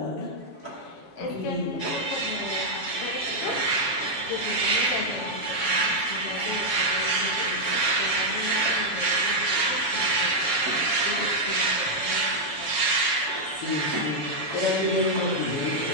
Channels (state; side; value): late; right; 7.2 ms